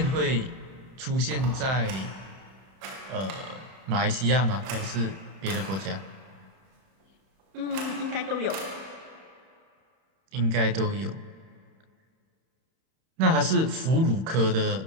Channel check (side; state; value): left; late; 31 ms